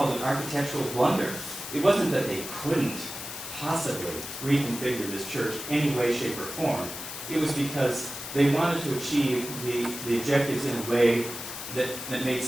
an architectural blunder. It wasn't that they couldn't possibly reconfigure this church any way, shape, or form. It was because they wanted to achieve the objectives in a way that made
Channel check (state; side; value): noise; left; hiss, 9 dB below the sound